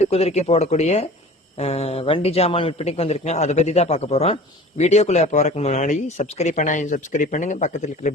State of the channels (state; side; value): normal; both; correlation 0.42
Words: குதிரைக்கு போடக்கூடிய வண்டி ஜாமான் விற்பனைக்கு வந்திருக்குங்க. அதை பற்றி தான் பார்க்க போகிறோம். வீடியோக்குள்ளே போகிறதுக்கு முன்னாடி சப்ஸ்கிரைப் பண்ணுங்க, பக்கத்தில் இருக்கிற